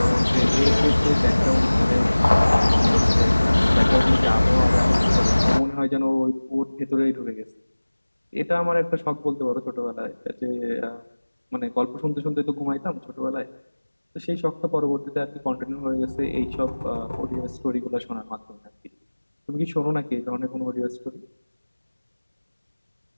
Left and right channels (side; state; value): both; inverted; correlation -1.00